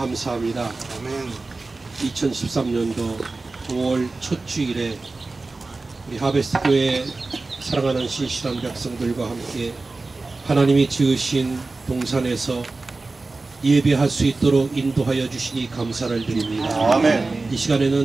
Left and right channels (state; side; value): quieter; left; 3.5 dB